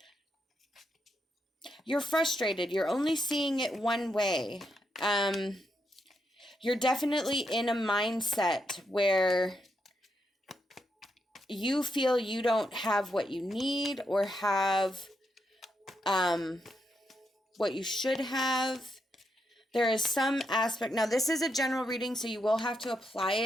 you're frustrated. You're only seeing it one way. You're definitely in a mindset where you feel you don't have what you need or have what you should have. There is some aspect. Now, this is a general reading, so you will have to apply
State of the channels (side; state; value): both; normal; correlation 0.81